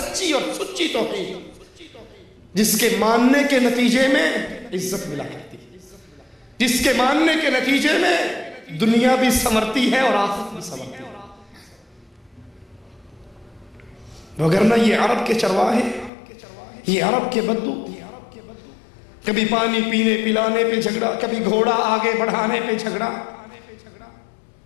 اور سچی توحید جس کے ماننے کے نتیجے میں عزت ملا کرتی ہے، جس کے ماننے کے نتیجے میں دنیا بھی سنورتی ہے اور آخرت بھی سنورتی ہے۔ وگرنہ یہ عرب کے چرواہے، یہ عرب کے بدو، کبھی پانی پینے پلانے پہ جھگڑا، کبھی گھوڑا آگے بڑھانے پہ جھگڑا،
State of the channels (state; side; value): drops out; right; at 16.1 s